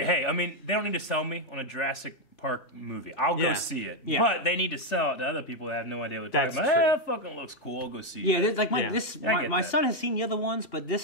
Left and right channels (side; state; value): right; late; 3.0 ms